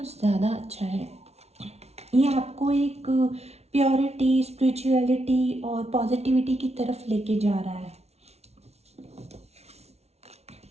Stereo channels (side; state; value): left; late; 0.31 ms